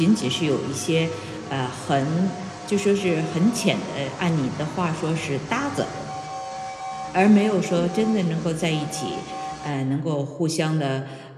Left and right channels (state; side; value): identical; both; correlation 1.00